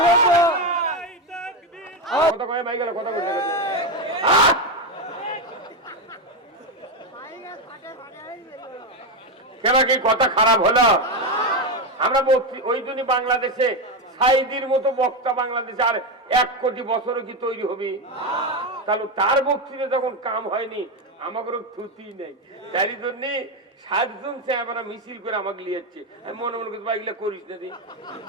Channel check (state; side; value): normal; both; correlation 0.10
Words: কথা কয়ে ভাই গেল, কথা বলতে গেছে। কেন কি কথা খারাপ হলো? আমরা ওই জন্য বাংলাদেশে সাইদির মতো বক্তা বাংলাদেশে আর 1 কোটি বছরও কি তৈরি হবে? তাহলে তার বক্তৃতা যখন কাম হয়নি, আমাকে থুতি নেই। তাই জন্য 7 জন চেহারা মিছিল করে আমাকে লিয়েছে। আমি মনে মনে করছি ভাই এগুলো করিস না,